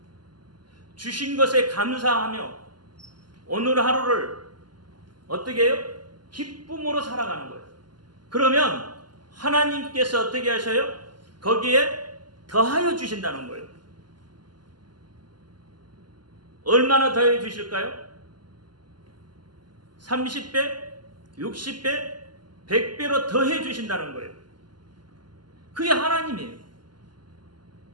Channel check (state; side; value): late; left; 0.71 ms